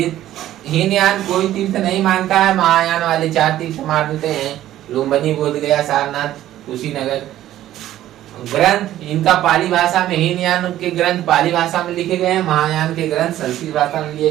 हीनयान कोई तीर्थ नहीं मानता है, महायान वाले 4 तीर्थ मानते हैं, लुम्बिनी, बोध गया, सारनाथ, कुशीनगर। ग्रंथ इनका पाली भाषा में, हीनयान के ग्रंथ पाली भाषा में लिखे गए हैं, महायान के ग्रंथ संस्कृत भाषा में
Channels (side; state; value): left; quieter; 13.2 dB